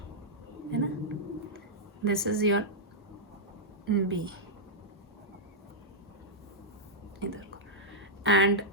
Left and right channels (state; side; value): normal; both; correlation -0.08